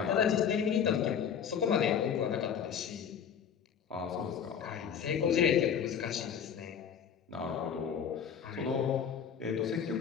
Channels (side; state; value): right; quieter; 7.8 dB